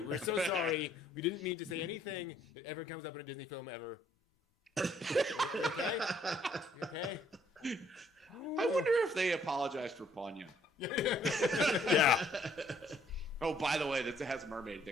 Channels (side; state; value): both; normal; correlation 0.64